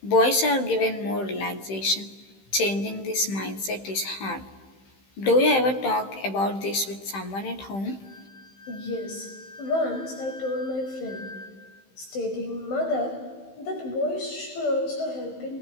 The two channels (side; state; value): right; late; 15 ms